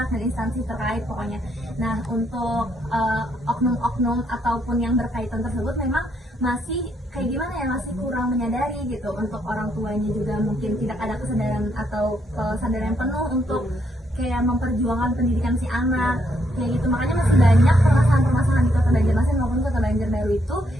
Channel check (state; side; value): normal; both; correlation 0.74